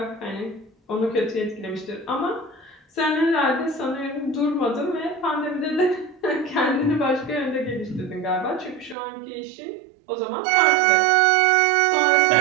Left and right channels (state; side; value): drops out; left; at 9.0 s